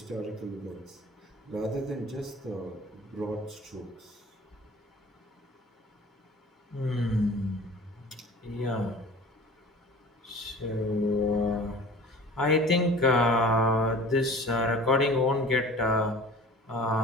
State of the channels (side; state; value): both; normal; correlation 0.43